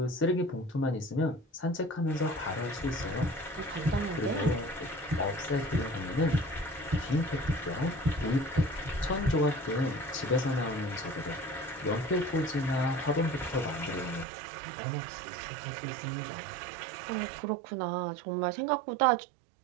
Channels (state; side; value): drops out; left; at 14.2 s